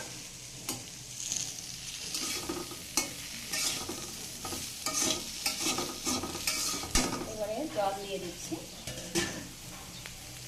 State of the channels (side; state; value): both; identical; correlation 1.00